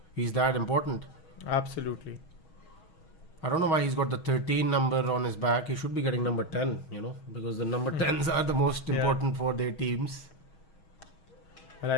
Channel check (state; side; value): late; right; 6.3 ms